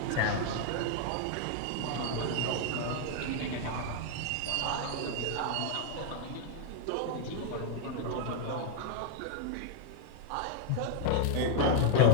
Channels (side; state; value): both; different; correlation -0.01